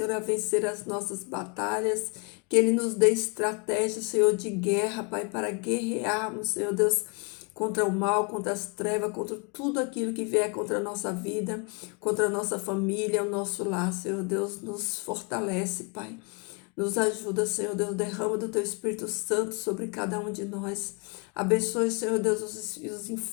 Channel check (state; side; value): quieter; right; 33.7 dB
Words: a vencer as nossas batalhas, que Ele nos dê estratégia, Senhor, de guerra, Pai, para guerrearmos, Senhor Deus, contra o mal, contra as trevas, contra tudo aquilo que vier contra a nossa vida, contra a nossa família, o nosso lar, Senhor Deus, nos fortalece, Pai. Nos ajuda, Senhor Deus, derrama do Teu Espírito Santo sobre cada um de nós. Abençoe, Senhor Deus, os